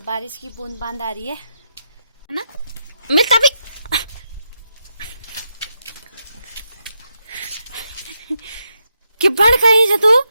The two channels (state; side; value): inverted; both; correlation -0.83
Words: बारिश की बूंद बांद आ रही है ना। मिलता भी कि बढ़ कहीं से तू